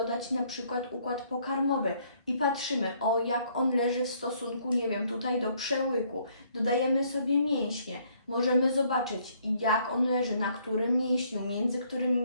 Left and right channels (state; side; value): inverted; both; correlation -0.66